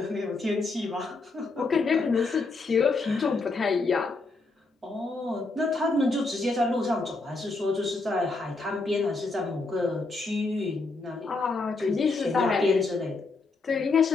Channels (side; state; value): right; quieter; 3.6 dB